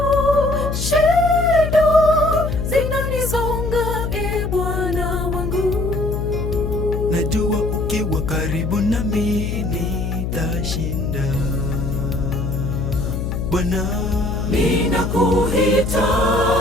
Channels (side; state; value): left; noise; hum, 2 dB below the sound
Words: shida zinanizonga Bwana wangu. Najua ukiwa karibu nami nitashinda Bwana.